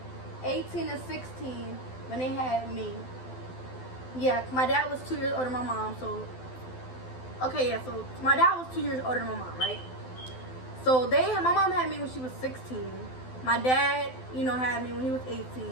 18 and 16 when they had me. Yeah, my dad was 2 years older than my mom, so okay, yeah, so my dad was 2 years older than my mom, right? So my mom had me when she was 16. My dad, you know, had me when he was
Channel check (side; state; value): right; late; 12 ms